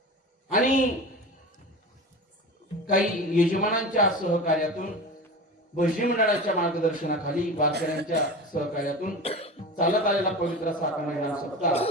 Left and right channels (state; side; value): normal; both; correlation 0.30